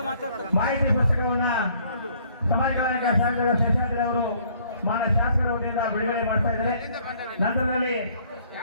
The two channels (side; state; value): both; inverted; correlation -0.61